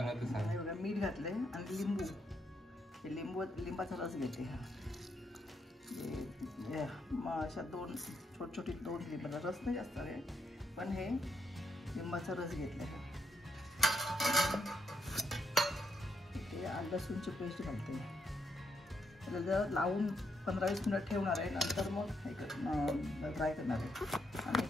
ते सांग। बघा मीठ घातले आणि लिंबू, हे लिंबाचा रस घेते। अशा दोन छोटी लिंबाचा रस नाही जास्त आहे, पण हे लिंबाचा रस घेतला। ते आलं लसूणची पेस्ट घालते। त्याला जर लावून 15-20 मिनिट ठेवणार आहे, नंतर मग हे फ्राय करणार आहे। आणि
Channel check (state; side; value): normal; both; correlation 0.78